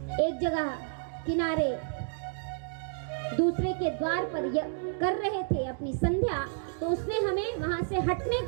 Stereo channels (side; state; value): left; silent; digital silence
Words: एक जगह किनारे दूसरे के द्वार पर कर रहे थे अपनी संध्या, तो उसने हमें वहां से हटने